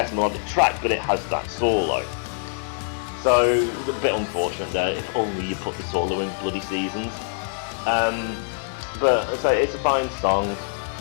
melodic track, but it has that solo. So, it's a bit unfortunate there, if only you put the solo in bloody Seasons. But it's a fine song.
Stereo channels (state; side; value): silent; right; digital silence